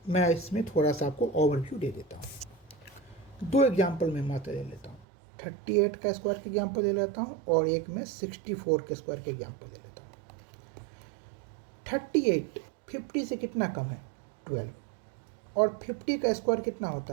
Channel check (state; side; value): drops out; left; at 5.1 s